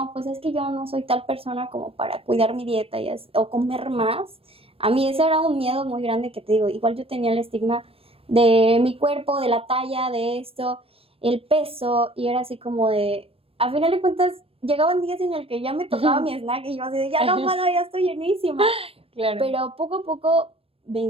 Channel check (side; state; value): left; late; 0.27 ms